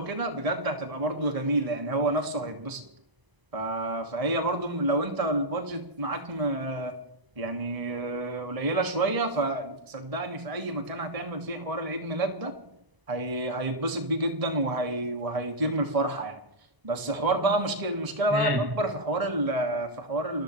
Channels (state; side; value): late; left; 1.0 ms